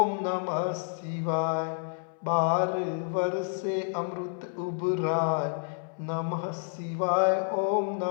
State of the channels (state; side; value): silent; right; 58 dB below the other